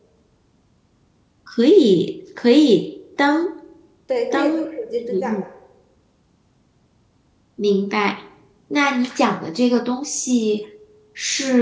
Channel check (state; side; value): identical; both; correlation 1.00